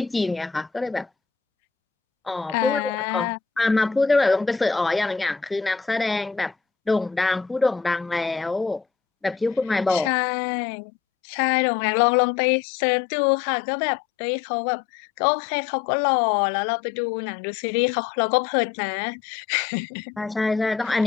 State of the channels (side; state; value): right; quieter; 6.6 dB